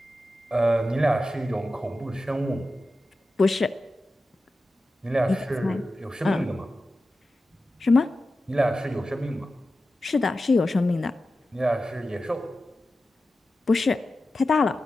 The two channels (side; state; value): both; normal; correlation 0.93